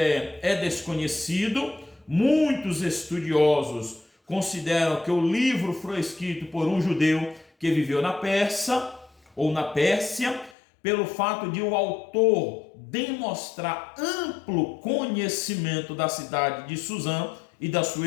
é desconhecido. Muitos estudiosos consideram que o livro foi escrito por um judeu que viveu na Pérsia, ou na Pérsia, pelo fato de o autor demonstrar amplo conhecimento da cidade de Suzã e da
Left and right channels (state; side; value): drops out; right; at 10.6 s